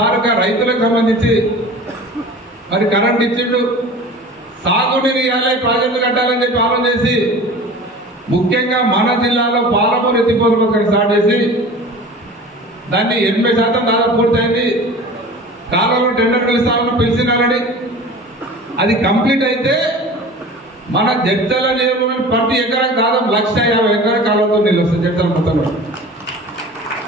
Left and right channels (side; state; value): both; normal; correlation 0.39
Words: రైతులకు సంబంధించి మరి కరెంట్ ఇచ్చిండు, సాగునీరు ఇవ్వాలి, ప్రాజెక్టులు కట్టాలని చెప్పి ఆలోచన చేసి ముఖ్యంగా మన జిల్లాలో పాలమూరు ఎత్తిపోతల పథకం స్టార్ట్ చేసి దాన్ని 80% దాదాపు పూర్తయింది. కాలంలో టెండర్ పిలుస్తామని పిలిచినారని అది కంప్లీట్ అయితే మన జడ్చల నియోజకవర్గం ప్రతి ఎకరానికి దాదాపు 150,000 ఎకరాల కాలంతో నీళ్ళు వస్తుంది జడ్చల మొత్తంలో.